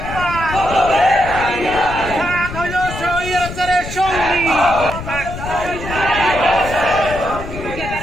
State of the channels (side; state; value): left; noise; rumble, 9 dB below the sound